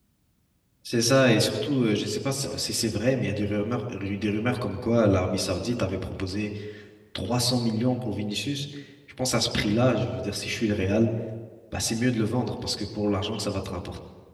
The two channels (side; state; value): both; identical; correlation 1.00